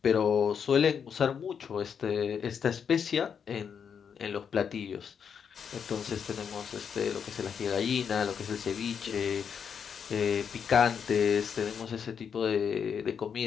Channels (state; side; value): quieter; right; 7.2 dB